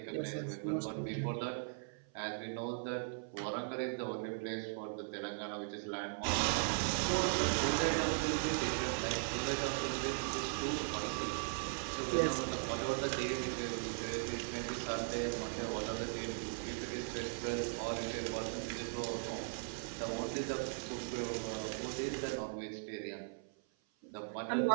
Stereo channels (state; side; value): silent; left; 52 dB below the other